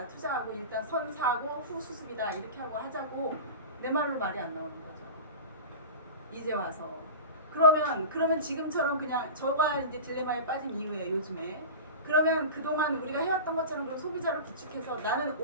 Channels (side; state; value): both; inverted; correlation -0.30